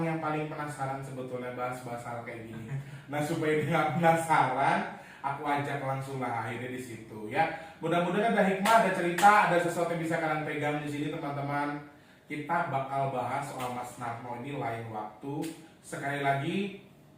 yang paling penasaran sebetulnya bahas-bahas hal kayak gini. Nah supaya dia nggak penasaran, aku ajak langsung lah akhirnya di situ ya. Mudah-mudahan ada hikmah, ada cerita, ada sesuatu yang bisa kalian pegang di sini teman-teman. Kita bakal bahas soal Mas Narno ini lain waktu. Sekali lagi,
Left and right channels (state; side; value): identical; both; correlation 1.00